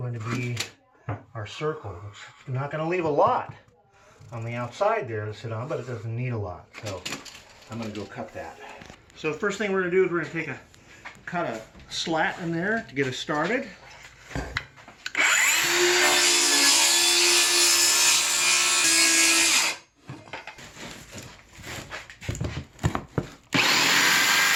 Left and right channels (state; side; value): identical; both; correlation 1.00